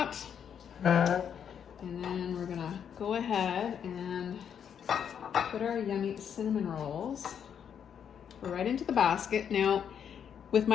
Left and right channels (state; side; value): quieter; right; 8.2 dB